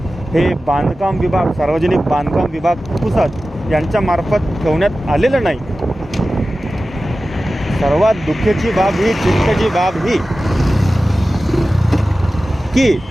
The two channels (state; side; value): normal; both; correlation 0.95